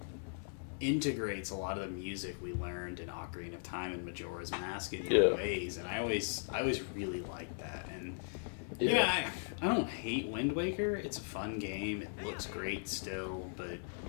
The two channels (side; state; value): right; silent; 52 dB below the other